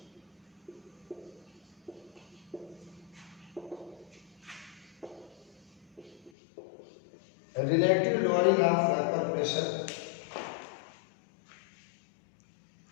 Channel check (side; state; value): right; drops out; at 6.3 s